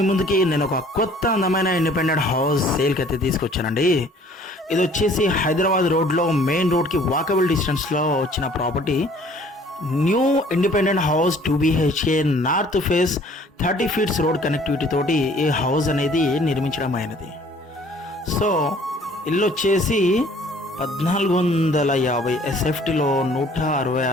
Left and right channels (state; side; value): normal; both; correlation 0.55